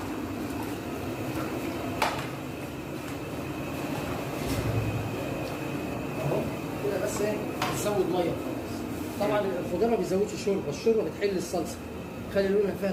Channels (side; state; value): both; identical; correlation 1.00